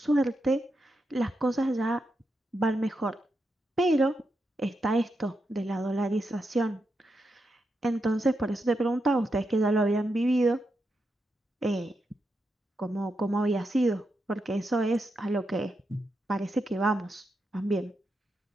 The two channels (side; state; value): both; normal; correlation 0.85